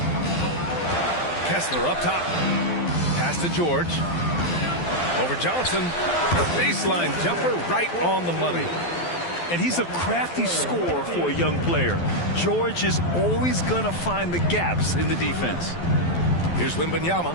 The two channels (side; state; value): right; late; 12 ms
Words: Kessler up top. Pass to George. Over Johnson. Baseline jumper right on the money. And he's a crafty scorer for a young player. George is always going to find the gaps in the defense. Here's Wembanyama.